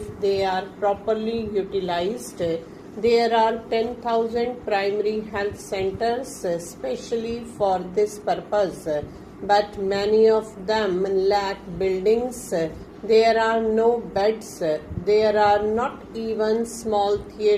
they are properly utilized. There are 10,000 primary health centers especially for this purpose, but many of them lack buildings. There are no beds. There are not even small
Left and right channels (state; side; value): identical; both; correlation 1.00